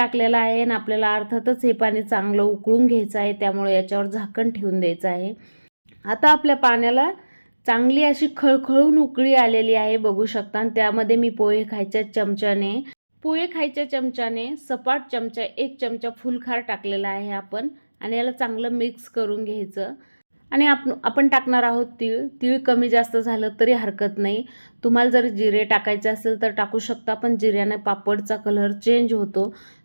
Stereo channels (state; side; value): inverted; both; correlation -1.00